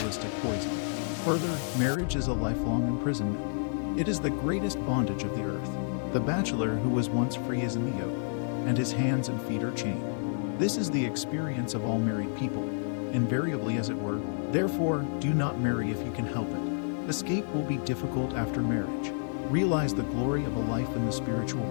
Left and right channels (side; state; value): right; silent; digital silence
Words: poison. Further, marriage is a lifelong imprisonment. It is the greatest bondage of the earth. The bachelor who was once free is in the yoke, and his hands and feet are chained. This is the experience of all married people, invariably as it were. Therefore, do not marry if you can help it. Escape will be difficult after marriage. Realize the glory of a life in the spiritual